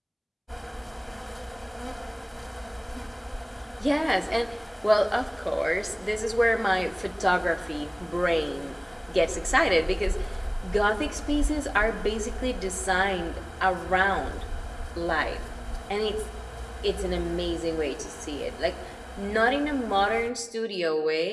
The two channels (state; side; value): identical; both; correlation 1.00